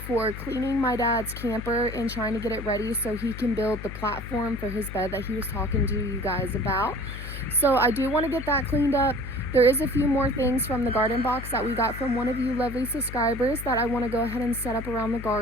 cleaning my dad's camper and trying to get it ready so he can build the platform for his bed that he was talking to you guys about. So I do want to get that cleaned up. There is a few more things from the garden box that we got from one of you lovely subscribers that I want to go ahead and set up around the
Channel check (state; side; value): noise; left; hum, 10 dB below the sound